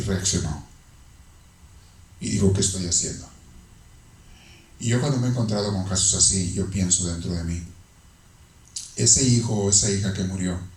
reaccionó. Y dijo, ¿qué estoy haciendo? Y yo cuando me he encontrado con casos así, yo pienso dentro de mí, ese hijo o esa hija que murió,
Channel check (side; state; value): both; identical; correlation 1.00